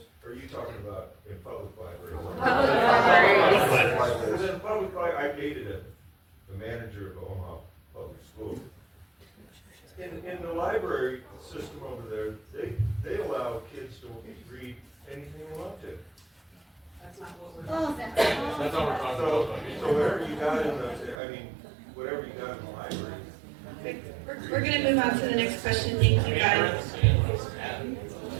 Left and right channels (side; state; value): left; drops out; at 21.2 s